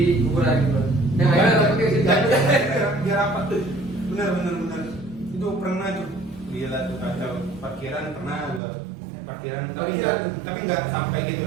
kuburan gitu? Yang lainnya tapi kayak gitu. Biar apa? Bener. Itu pernah tuh. Gila tuh kacau. Parkiran pernah gua. Parkiran tapi nggak sampai gitu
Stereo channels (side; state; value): left; drops out; at 8.6 s